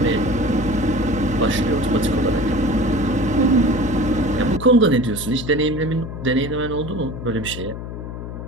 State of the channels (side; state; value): left; noise; hum, 8 dB below the sound